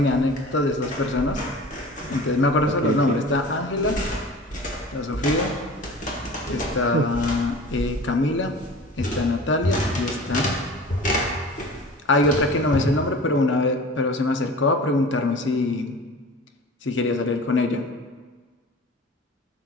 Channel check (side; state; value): both; normal; correlation 0.39